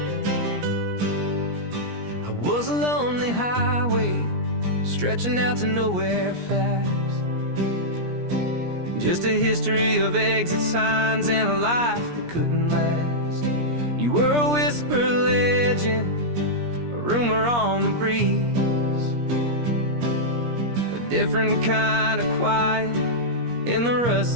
I was a lonely highway, stretching out to nowhere fast. Just a history of exit signs and a life that couldn't last. You were a whisper legend, a rumor on the breeze, a different kind of quiet in the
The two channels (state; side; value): late; left; 17 ms